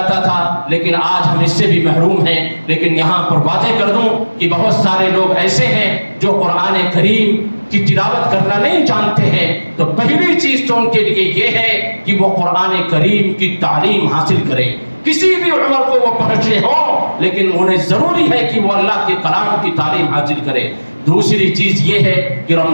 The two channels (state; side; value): inverted; both; correlation -1.00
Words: تھا, لیکن آج ہم اس سے بھی محروم ہیں. لیکن یہاں پر واضح کر دوں کہ بہت سارے لوگ ایسے ہیں جو قرآن کریم کی تلاوت کرنا نہیں جانتے ہیں. تو پہلی چیز تو ان کے لیے یہ ہے کہ وہ قرآن کریم کی تعلیم حاصل کریں. کسی بھی عمر کو وہ پہنچے ہوں, لیکن انہیں ضروری ہے کہ وہ اللہ کے کلام کی تعلیم حاصل کریں. دوسری چیز یہ ہے کہ